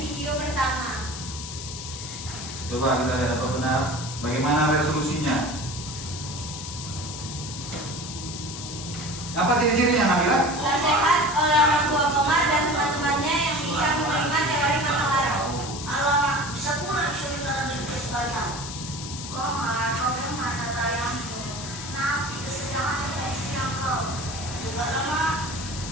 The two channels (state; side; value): noise; left; hiss, 9 dB below the sound